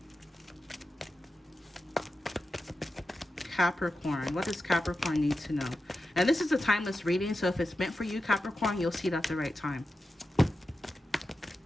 Capricorn, what does Capricorn need to know? And this is a timeless reading, so if it's meant for you, Capricorn, you'll see it at the right time.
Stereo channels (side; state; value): both; normal; correlation 0.91